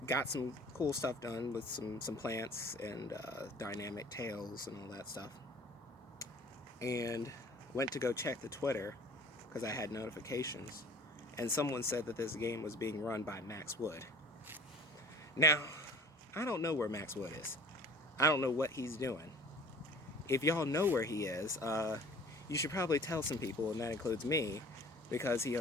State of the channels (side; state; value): both; normal; correlation 0.46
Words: Got some cool stuff done with some plants and dynamic tails and all that stuff. And went to go check the Twitter because I had notifications, and someone said that this game was being run by Max Wood. Now, I don't know where Max Wood is. I don't know what he's doing. If y'all know where he is, you should probably tell some people, and that includes me, because he